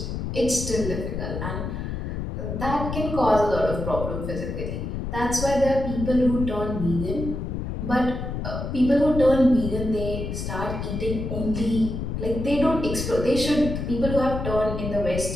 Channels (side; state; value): left; noise; rumble, 4 dB below the sound